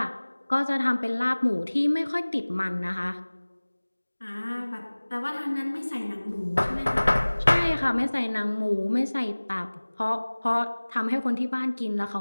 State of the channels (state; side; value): inverted; both; correlation -1.00